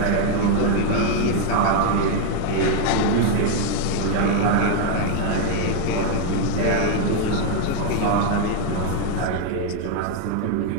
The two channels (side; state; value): both; different; correlation 0.01